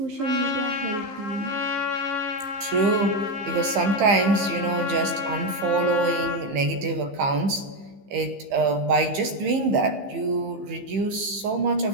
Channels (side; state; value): left; late; 15 ms